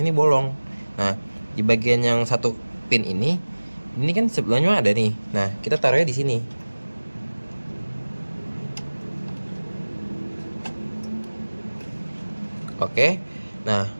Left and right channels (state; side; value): inverted; both; correlation -1.00